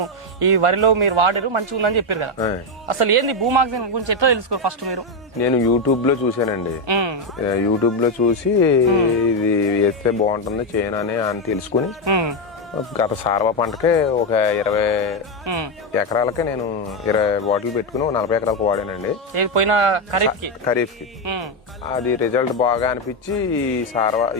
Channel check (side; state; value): both; normal; correlation 0.06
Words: ఈ వరిలో మీరు వాడారు మంచిగా ఉందని చెప్పారు కదా. అసలు ఏంది భూమాక్సిన్ గురించి ఎట్లా తెలుసుకోరు ఫస్ట్ మీరు? నేను యూట్యూబ్ లో చూసానండి. యూట్యూబ్ లో చూసి ఇది వేస్తే బాగుంటుంది చేయను అని తెలుసుకుని గత సార్వ పంటకే ఒక 20 ఎకరాలకే నేను 20 బాటిల్ పెట్టుకుని 40 ఎకరాలకు వాడానండి. ఖరీఫ్ కి అది రిజల్ట్ బాగా అనిపించి